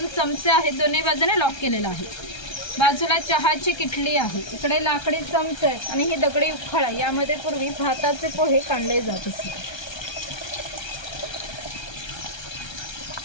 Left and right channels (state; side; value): late; right; 1.3 ms